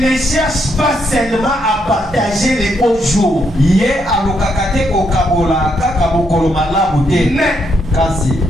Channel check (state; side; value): normal; both; correlation 0.77